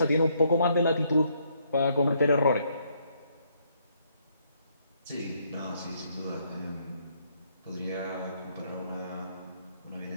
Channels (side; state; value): both; inverted; correlation -0.71